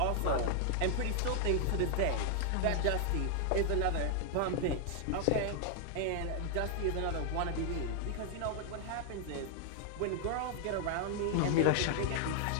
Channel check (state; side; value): different; both; correlation 0.00